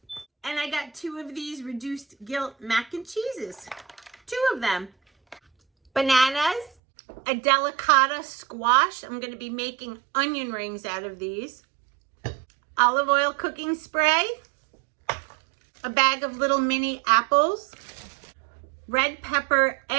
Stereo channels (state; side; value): drops out; left; at 6.7 s